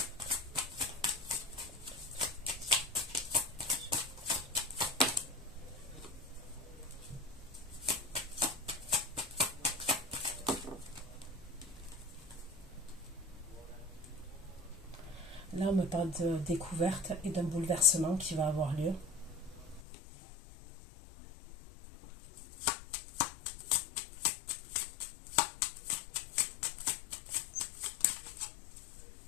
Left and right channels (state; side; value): drops out; right; at 19.8 s